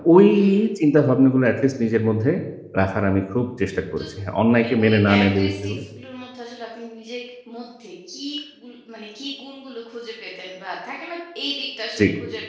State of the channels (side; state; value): both; identical; correlation 1.00